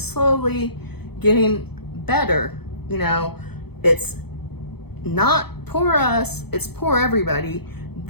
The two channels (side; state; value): right; late; 0.97 ms